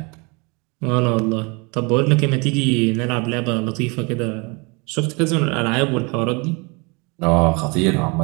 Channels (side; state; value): left; quieter; 29.4 dB